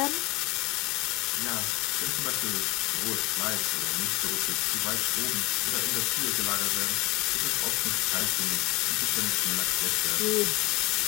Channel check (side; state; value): right; quieter; 22.8 dB